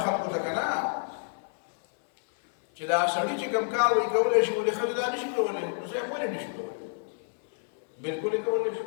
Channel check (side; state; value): right; silent; 59 dB below the other